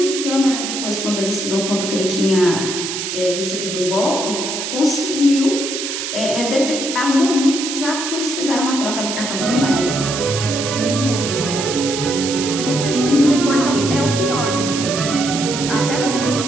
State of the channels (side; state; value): right; noise; hiss, 4 dB below the sound